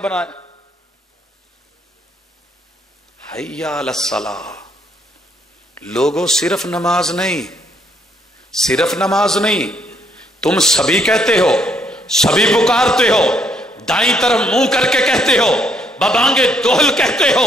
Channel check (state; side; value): normal; both; correlation 0.70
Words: ہے؟ حیا علی الصلاۃ. لوگوں صرف نماز نہیں, صرف نماز نہیں, تم سبھی کہتے ہو, سبھی پکارتے ہو, دائیں طرف منہ کر کے کہتے ہو, ببانگے دوہل کہتے ہو,